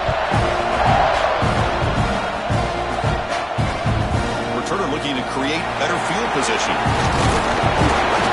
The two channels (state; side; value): identical; both; correlation 1.00